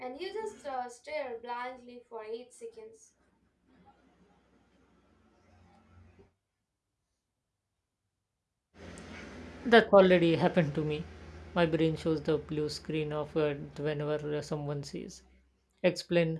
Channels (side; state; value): both; identical; correlation 1.00